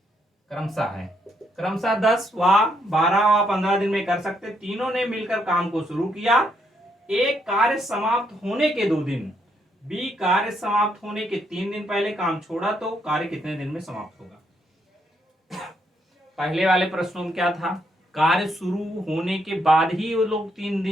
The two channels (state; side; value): normal; both; correlation 0.75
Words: क्रमशः है, क्रमशः 10 व 12 व 15 दिन में कर सकते। तीनों ने मिलकर काम को शुरू किया। ए कार्य समाप्त होने के 2 दिन, बी कार्य समाप्त होने के 3 दिन पहले काम छोड़ा, तो कार्य कितने दिन में समाप्त होगा? पहले वाले प्रश्नों में क्या था? कार्य शुरू होने के बाद ही वो लोग 3